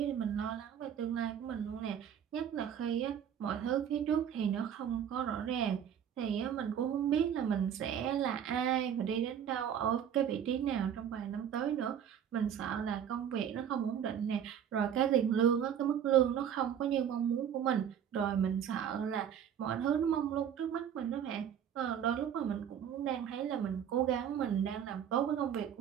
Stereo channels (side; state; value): left; quieter; 8.9 dB